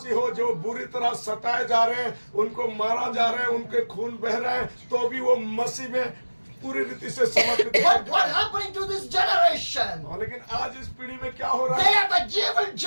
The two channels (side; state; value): both; inverted; correlation -1.00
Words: हो जो बुरी तरह सताए जा रहे हैं, उनको मारा जा रहा है, उनके खून बह रहे हैं, तो भी वो मसीह में पूरी रीति से समर्पित But हैं। what happening to this generation? और लेकिन आज इस पीढ़ी में क्या हो रहा They है? are the evil